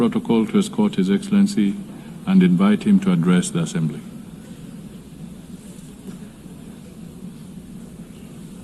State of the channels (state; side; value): identical; both; correlation 1.00